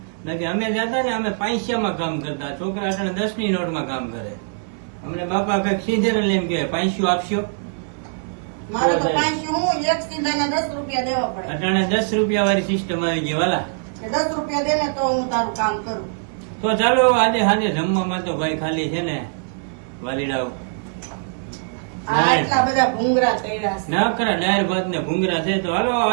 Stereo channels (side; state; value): left; silent; 64 dB below the other